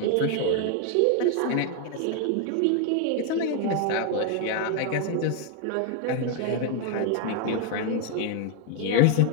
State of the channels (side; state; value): both; different; correlation 0.01